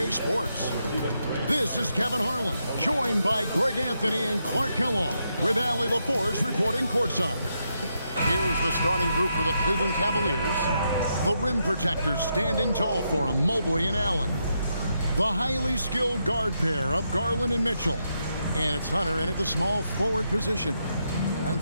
Sports. This is Kevin Harlan, joined by Greg Anthony and Clark Kellogg, with Allie LaForce reporting courtside. Here's the starting group for the Cleveland Cavaliers. The rim protectors standing tall for them, Mobley and Allen. The highly skilled guard pair of Garland and Mitchell. And it's Hunter in at the small forward position. And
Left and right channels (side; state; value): both; inverted; correlation -0.81